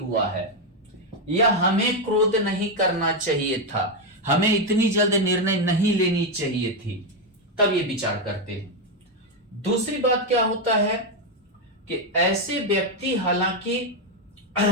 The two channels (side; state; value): both; normal; correlation 0.05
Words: है, या हमें क्रोध नहीं करना चाहिए था, हमें इतनी जल्द निर्णय नहीं लेनी चाहिए थी, तब ये विचार करते हैं। दूसरी बात क्या होता है कि ऐसे व्यक्ति, हालांकि